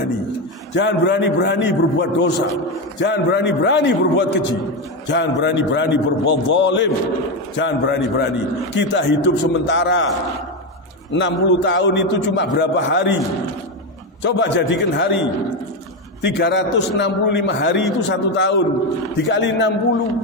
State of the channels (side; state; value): both; normal; correlation 0.11